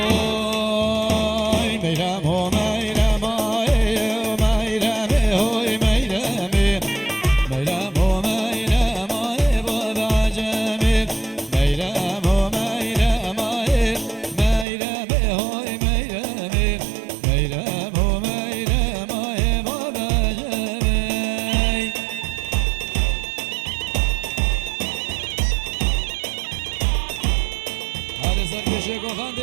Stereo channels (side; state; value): left; drops out; at 14.7 s